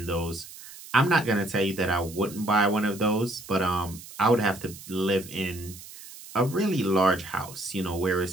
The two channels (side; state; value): right; noise; hiss, 16 dB below the sound